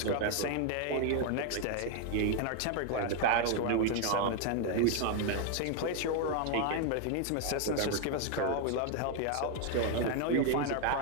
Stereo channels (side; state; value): both; different; correlation 0.00